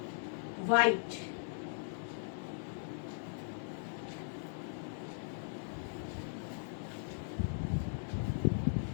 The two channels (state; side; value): silent; right; digital silence